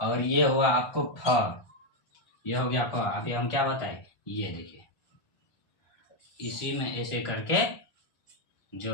ये हुआ आपको फ, ये हो गया फ। अभी हम क्या बताए, ये देखिए इसी में ऐसे करके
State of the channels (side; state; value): right; late; 1.4 ms